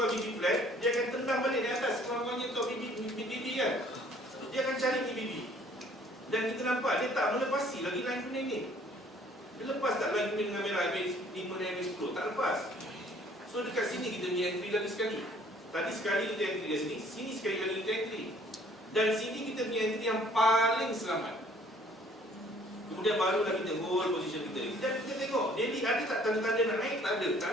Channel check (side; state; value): both; normal; correlation 0.58